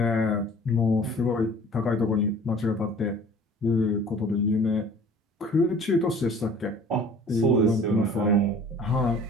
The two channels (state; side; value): normal; both; correlation 0.49